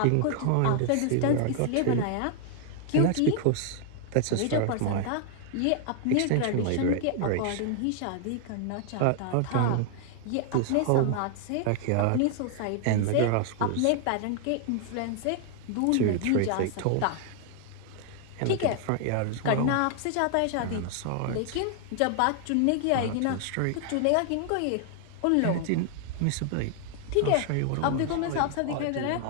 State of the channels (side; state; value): both; different; correlation 0.00